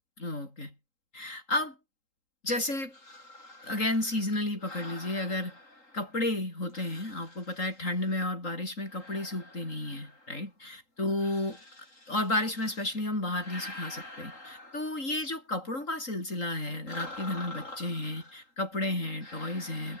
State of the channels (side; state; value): right; late; 3.8 ms